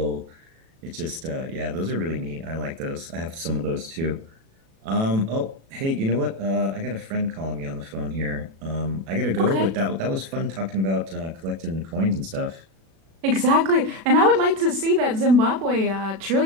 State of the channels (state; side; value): late; left; 36 ms